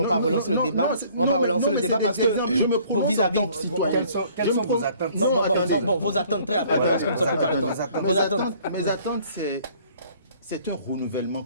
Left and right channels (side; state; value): both; inverted; correlation -0.57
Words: le débat. On va pas relancer le débat parce que vos vis-à-vis... Quelles sont vos attentes? Vos attentes très rapidement parce que nous sommes préparés à temps. Mes attentes, c'est un